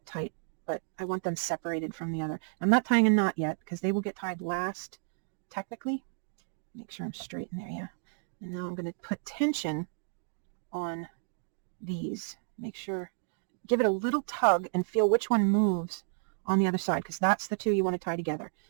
tight, but I want them separated from the other. I'm not tying a knot yet, because they will get tied last, technically. Make sure I'm straight in there, yeah. And now I'm going to put tension on these. Make sure, give it a little tug and feel which one moves on the other side, because that's the two you want to tie together.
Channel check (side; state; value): left; silent; digital silence